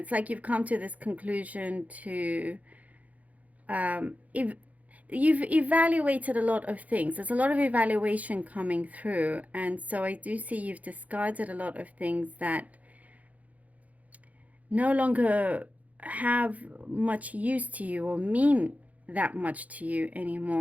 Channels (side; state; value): left; late; 0.072 ms